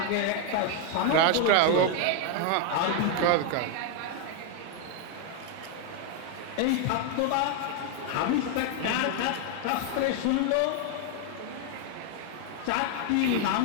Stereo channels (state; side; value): different; both; correlation 0.00